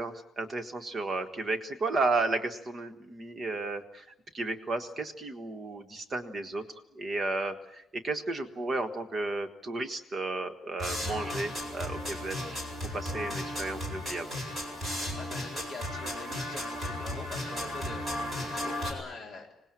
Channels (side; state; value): both; normal; correlation 0.75